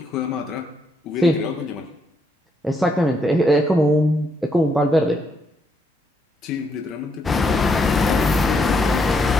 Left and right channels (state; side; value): normal; both; correlation 0.76